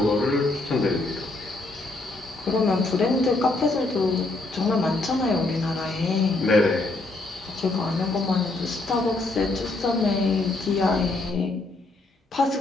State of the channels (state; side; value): quieter; right; 3.1 dB